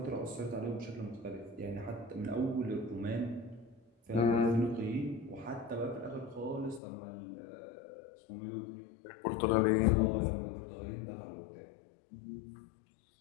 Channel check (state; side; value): drops out; right; at 6.8 s